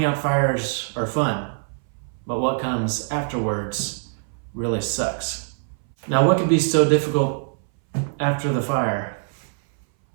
out fires are fun, but what comes afterwards really sucks. Now, what could be so difficult after the fire?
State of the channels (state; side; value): silent; left; 60 dB below the other